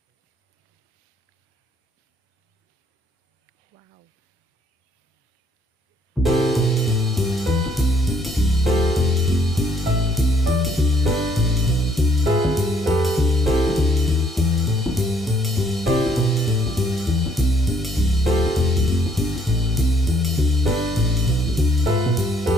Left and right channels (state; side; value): normal; both; correlation 0.65